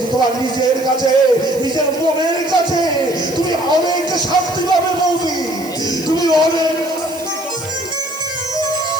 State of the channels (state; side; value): noise; right; hiss, 17 dB below the sound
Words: তোমার নিজের কাছে, নিজের মনের কাছে তুমি অনেক শান্তি পাবে বৌদি, তুমি অনেক।